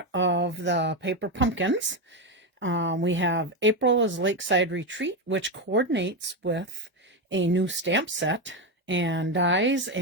of the paper pumpkins. We have April is Lakeside Retreat, which coordinates with a new stamp set and dies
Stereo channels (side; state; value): both; normal; correlation 0.11